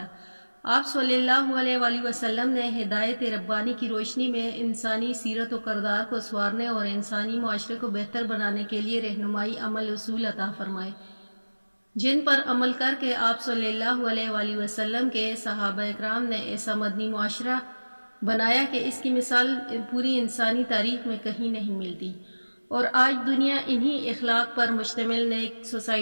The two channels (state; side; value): inverted; both; correlation -1.00